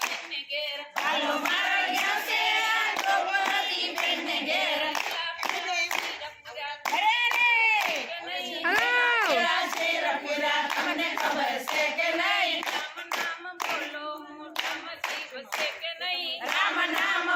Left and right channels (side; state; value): both; identical; correlation 1.00